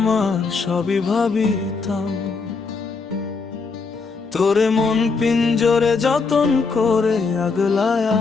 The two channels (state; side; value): quieter; right; 4.6 dB